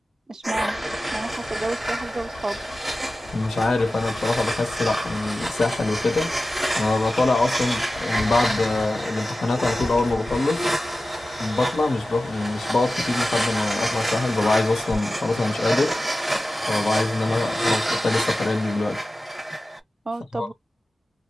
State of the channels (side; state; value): both; normal; correlation 0.95